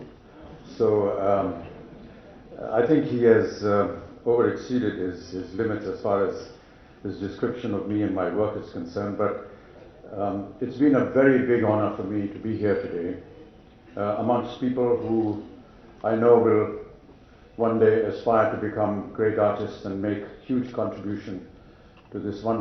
So I think he has overexceeded his limits as far as his description of me and my work is concerned. But it's been a very big honor for me to be here today amongst people who I know will one day aspire to become great artists and make huge contribution to this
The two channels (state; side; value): identical; both; correlation 1.00